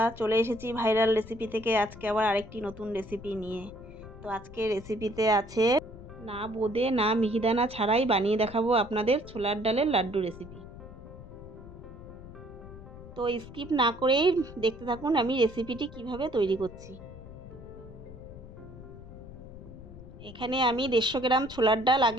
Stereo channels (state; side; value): noise; left; rumble, 15 dB below the sound